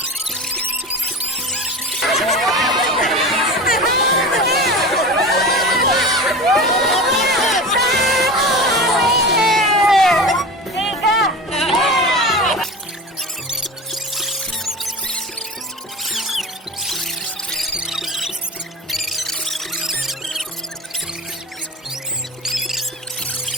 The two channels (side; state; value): both; normal; correlation 0.31